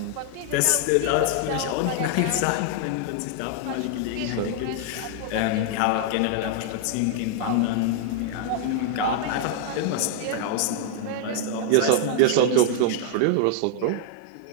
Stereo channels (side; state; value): both; different; correlation 0.00